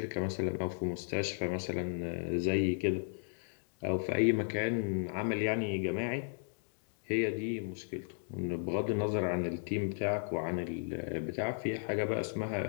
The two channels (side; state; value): right; silent; digital silence